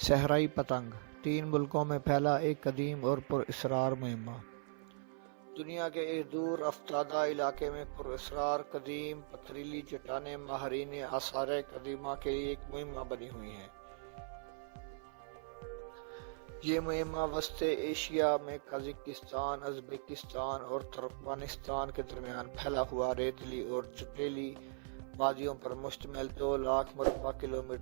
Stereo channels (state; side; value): silent; left; 52 dB below the other